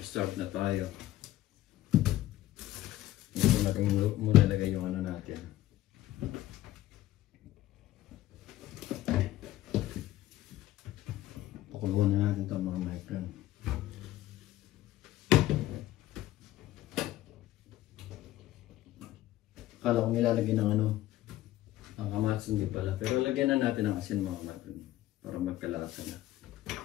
na tayo. Ito natin muna lagay yung ano natin. Pakuluan na natin ito mga my friend. Akala ko nilalagay ng ano, ang kamatis, hindi pala. Pero lagyan na natin ng asin mga my friend para magkalasa na.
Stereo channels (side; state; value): right; quieter; 14.9 dB